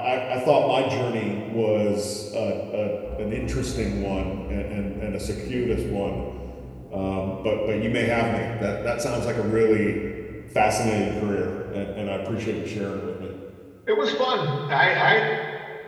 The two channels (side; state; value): both; identical; correlation 1.00